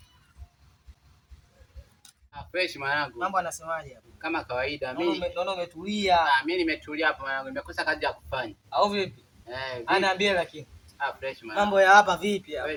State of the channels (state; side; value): identical; both; correlation 1.00